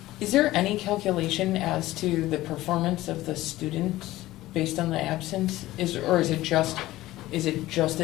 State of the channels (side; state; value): right; quieter; 16.6 dB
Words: Is there any calculation as to the performance of the students based on the absence? Or is it just